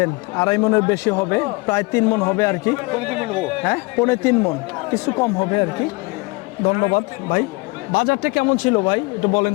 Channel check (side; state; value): right; quieter; 26.5 dB